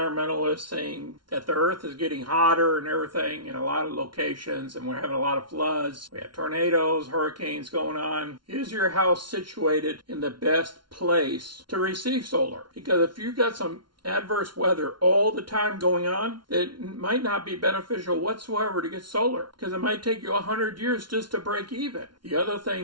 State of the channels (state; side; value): late; left; 0.72 ms